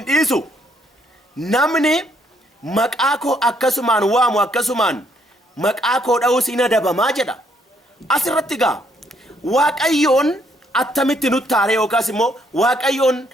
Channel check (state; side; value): normal; both; correlation 0.70